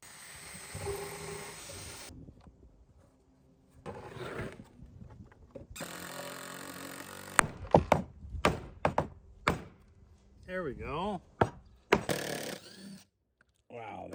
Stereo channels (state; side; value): identical; both; correlation 1.00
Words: There we go. Wow,